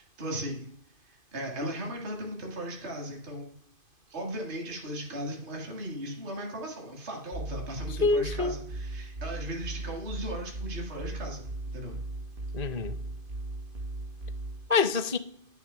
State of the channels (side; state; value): left; late; 2.5 ms